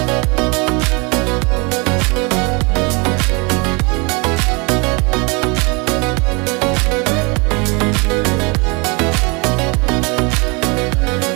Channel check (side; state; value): left; quieter; 29.3 dB